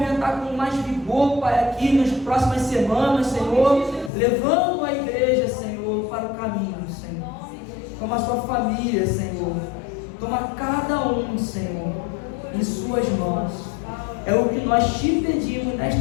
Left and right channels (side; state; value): right; drops out; at 4.1 s